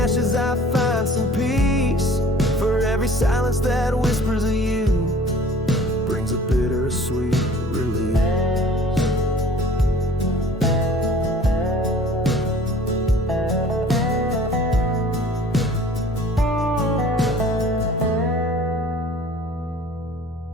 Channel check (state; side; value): normal; both; correlation 0.49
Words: I find some peace. For every silence that whispers of you brings a bittersweet release.